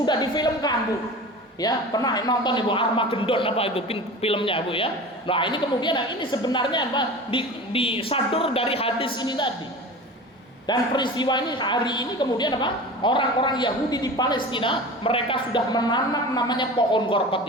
difilmkan Bu ya, pernah nonton Ibu Armageddon apa itu filmnya Bu ya. Nah ini kemudian ini sebenarnya apa disadur dari hadis ini tadi. Dan peristiwa ini hari ini kemudian apa? Orang-orang Yahudi di Palestina, mereka sudah menanam namanya pohon gorkot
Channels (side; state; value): both; normal; correlation 0.34